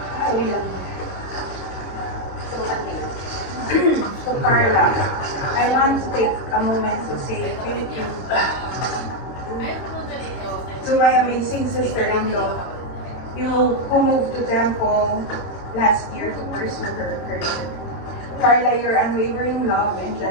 So Carla, I want to take a moment to say thank you to my amazing sister-in-law, you who moved to Temple last year to pursue her career. Carla, your unwavering love and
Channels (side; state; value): right; late; 22 ms